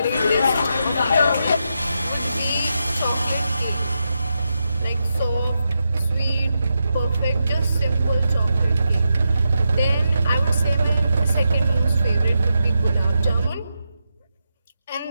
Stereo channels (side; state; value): both; inverted; correlation -0.86